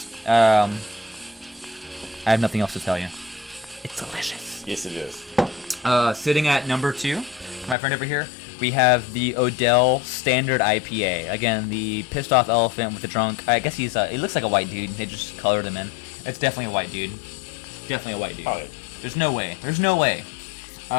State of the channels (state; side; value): drops out; right; at 7.8 s